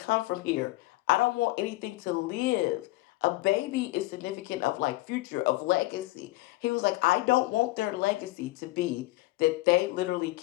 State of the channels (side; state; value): right; quieter; 19.6 dB